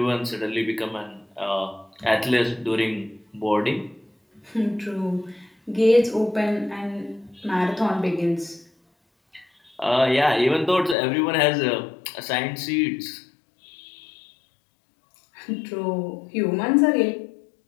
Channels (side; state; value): right; drops out; at 11.0 s